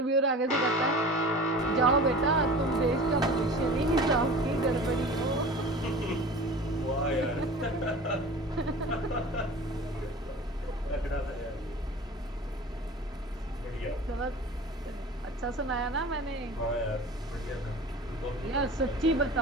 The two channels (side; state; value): both; normal; correlation 0.39